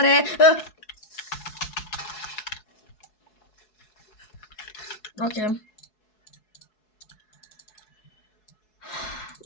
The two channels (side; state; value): right; late; 4.7 ms